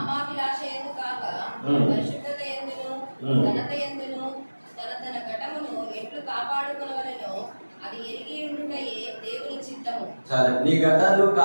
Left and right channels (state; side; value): inverted; both; correlation -1.00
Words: యందు కాక పరిశుద్ధత ఎందును ఘనత ఎందును తన ఘటమును ఎట్లు కాపాడుకొనవలెనో అది ఎరిగి ఉండుటయే దేవుని చిత్తము. సరే, నీ ఘటాన్ని